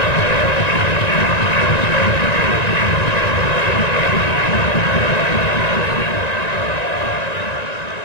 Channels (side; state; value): right; late; 1.9 ms